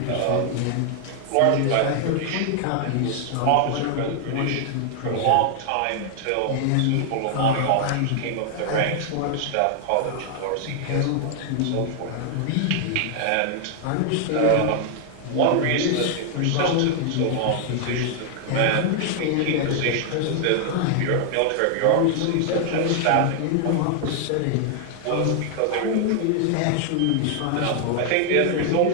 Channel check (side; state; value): both; different; correlation 0.00